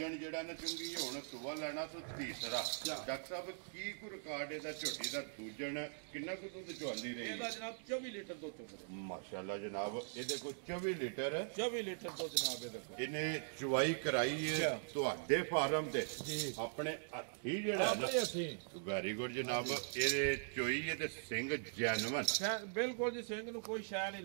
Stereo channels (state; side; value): silent; left; digital silence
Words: ਜਿਹੜਾ ਨਾ ਚੁੰਗੀ ਹੁਣ ਸੂਆ ਲੈਣਾ ਤੇ ਤੀਸਰਾ। ਡਾਕਟਰ ਸਾਹਿਬ ਕੀ ਕੋ ਰਿਕਾਰਡ ਇਹਦਾ ਝੋਟੀ ਦਾ ਦੂਜਣ ਕਿੰਨਾ ਕੁ ਦੁੱਧ ਚੁਆਂਦੀ ਰਹੀ? ਇਹਦਾ ਜਨਾਬ 24 ਲੀਟਰ ਦੁੱਧ ਚੁੰਗਦਾ। ਮਾਸ਼ਾਅੱਲਾ ਜਨਾਬ। ਇਹਦੇ ਕੋਲ 24 ਲੀਟਰ 24 ਲੀਟਰ ਦੁੱਧ ਜਨਾਬ ਇਹਦੇ ਕੋਲ। ਇਹਨੇ ਚੁਆਈ ਕਰਾਈ ਹੈ ਤੁਹਾਡੇ ਫਾਰਮ ਤੇ ਆਪਣੇ ਹੱਥੀ ਜਿਹੜਾ ਨਾ? ਵੈਰੀ ਗੁੱਡ ਜਨਾਬ। ਇਹਦੇ ਚੋਈ ਹੈ ਤੇ ਸਿੰਘ ਜੈਨੂਨ ਬਿਲਕੁਲ ਜੀ। ਸਿੰਘ ਨੂੰ ਕੋਈ ਸ਼ੈ ਨਹੀਂ